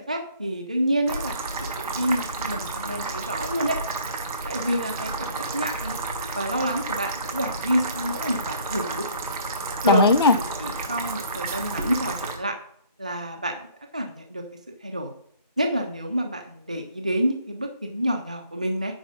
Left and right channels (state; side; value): inverted; both; correlation -0.57